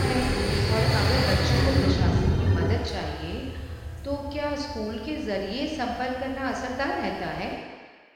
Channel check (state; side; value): identical; both; correlation 1.00